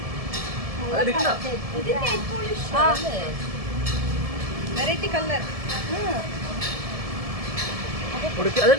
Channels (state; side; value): late; left; 1.7 ms